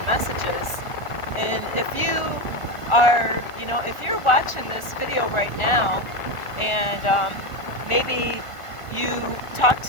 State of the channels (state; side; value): late; right; 1.5 ms